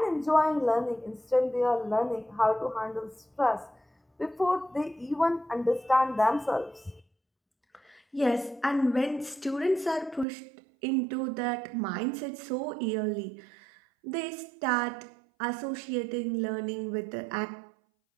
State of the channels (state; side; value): drops out; left; at 10.2 s